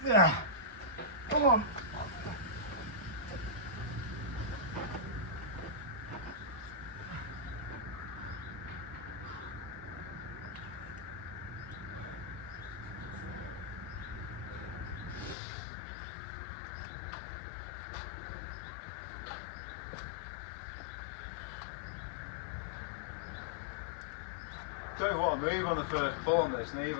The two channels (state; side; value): drops out; right; at 15.4 s